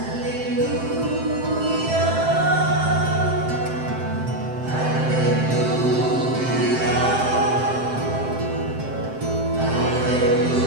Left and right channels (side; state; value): left; late; 7.7 ms